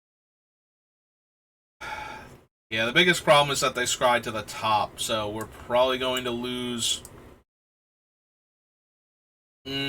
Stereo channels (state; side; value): identical; both; correlation 1.00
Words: Yeah, the biggest problem is that they scryed to the top, so we're probably going to lose...